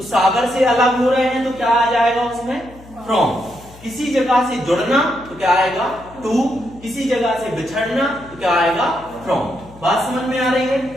सागर से अलग हो रहे हैं तो क्या आ जाएगा उसमें? फ्रॉम. किसी जगह से जुड़ना तो क्या आएगा? टू. किसी जगह से बिछड़ना तो क्या आएगा? फ्रॉम. बात समझ में आ रही है?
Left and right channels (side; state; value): left; noise; hum, 22 dB below the sound